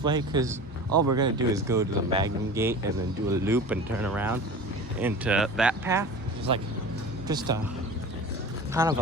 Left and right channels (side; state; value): both; normal; correlation 0.35